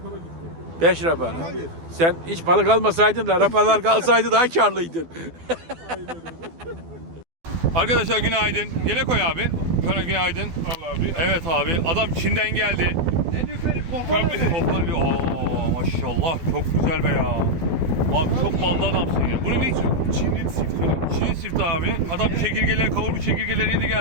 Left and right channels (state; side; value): late; left; 12 ms